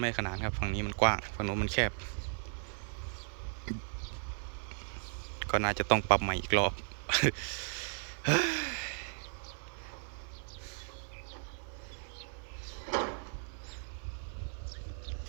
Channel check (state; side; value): silent; left; 54 dB below the other